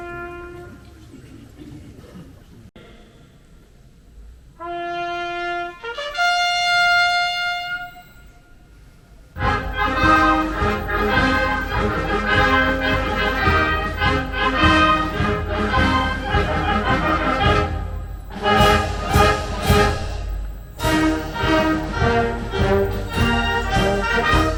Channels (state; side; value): identical; both; correlation 1.00